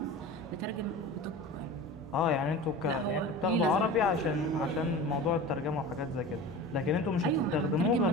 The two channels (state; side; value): normal; both; correlation 0.34